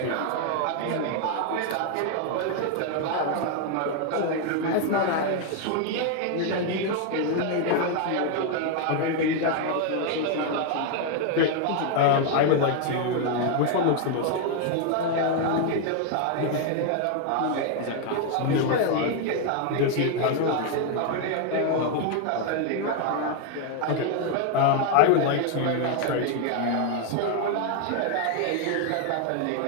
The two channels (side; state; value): both; different; correlation 0.01